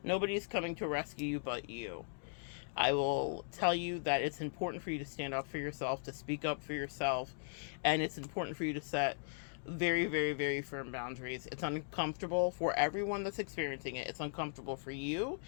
Nobody's coming to rescue you but you. I will tell you that it's important for you to stand up for yourself, to speak up for yourself, and it's important for you to set very, very, very firm boundaries. It's uncomfortable for everyone that's experiencing it. It's uncomfortable for you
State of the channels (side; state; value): right; silent; digital silence